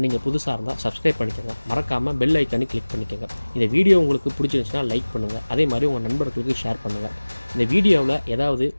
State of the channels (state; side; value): inverted; both; correlation -1.00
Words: நீங்கள் புதுசாக இருந்தால் சப்ஸ்கிரைப் பண்ணிக்கோங்க. மறக்காமல் பெல் ஐக்கானு கிளிக் பண்ணிக்கோங்க. இந்த வீடியோ உங்களுக்கு பிடிச்சிருந்துச்சுன்னா லைக் பண்ணுங்கள். அதே மாதிரி உங்கள் நண்பர்களுக்கு ஷேர் பண்ணுங்கள். இந்த வீடியோவில் ஏதாவது